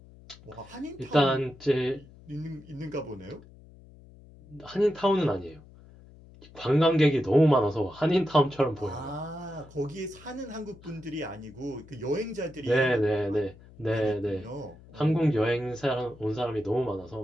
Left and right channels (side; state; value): left; noise; hum, 22 dB below the sound